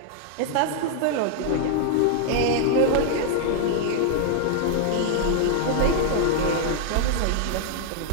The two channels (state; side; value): different; both; correlation -0.01